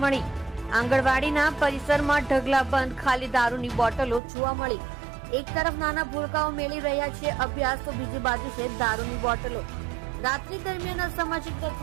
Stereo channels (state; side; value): drops out; left; at 4.2 s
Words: મળી। આંગણવાડીના પરિસરમાં ઢગલાબંધ ખાલી દારૂની બોટલો જોવા મળી। એક તરફ નાના ભૂલકાઓ મેળવી રહ્યા છે અભ્યાસ, તો બીજી બાજુ છે દારૂની બોટલો। રાત્રિ દરમિયાન અસામાજિક